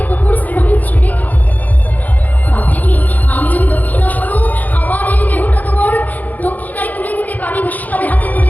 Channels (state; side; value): late; right; 0.081 ms